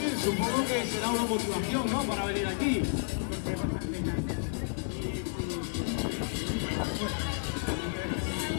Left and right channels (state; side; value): silent; right; digital silence